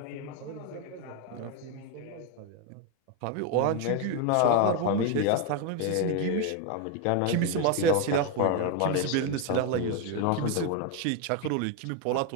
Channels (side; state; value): both; different; correlation 0.01